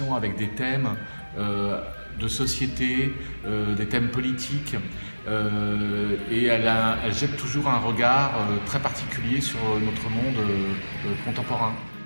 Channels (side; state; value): both; inverted; correlation -1.00